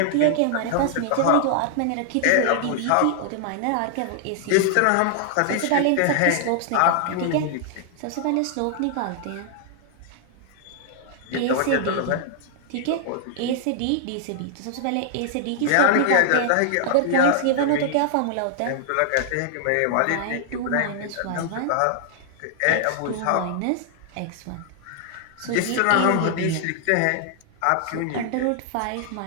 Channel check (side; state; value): both; different; correlation -0.01